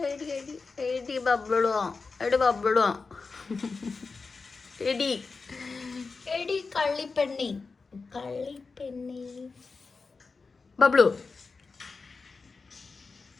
എടി എടി എടി ബബിളുവോ, എടി ബബിളുവോ, എടി എടി കള്ളിപ്പെണ്ണി, കള്ളിപ്പെണ്ണി ബബ്ലു.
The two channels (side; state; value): right; quieter; 4.4 dB